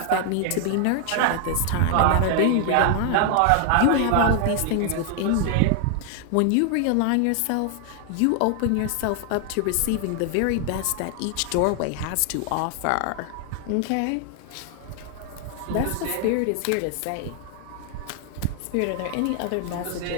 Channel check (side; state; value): both; different; correlation 0.00